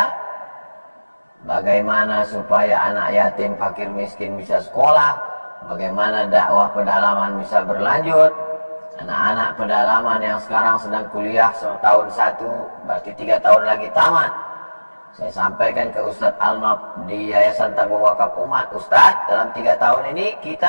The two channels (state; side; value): inverted; both; correlation -1.00